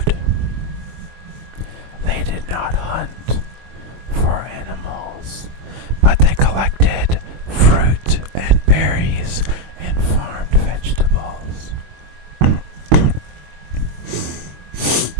They did not hunt for animals, but they collected fruit and berries and farmed vegetables.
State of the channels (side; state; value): left; late; 23 ms